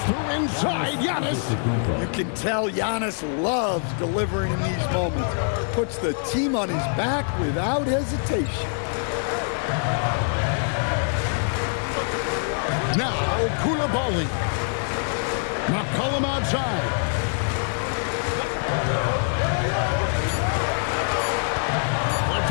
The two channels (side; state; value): right; silent; 62 dB below the other